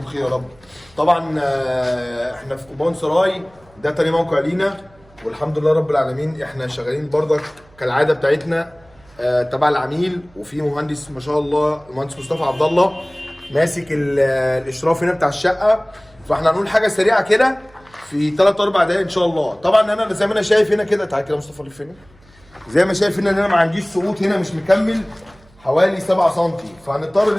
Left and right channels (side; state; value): right; noise; hum, 29 dB below the sound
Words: بخير يا رب. طبعا احنا في كوبان سراي، ده تاني موقع لينا والحمد لله رب العالمين. احنا شغالين برضك كالعاده بتاعتنا تبع العميل، وفي مهندس ما شاء الله المهندس مصطفى عبد الله ماسك الاشراف هنا بتاع الشقه. فاحنا هنقول حاجه سريعه كده في 3 4 دقايق ان شاء الله. طبعا انا زي ما انا شايف هنا كده، تعالى كده مصطفى لف هنا. زي ما شايف هنا ان انا ما عنديش سقوط هنا، مش مكمل حوالي 7 سم، فهنضطر